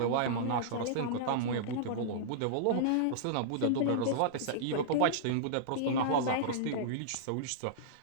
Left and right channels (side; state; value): both; different; correlation -0.02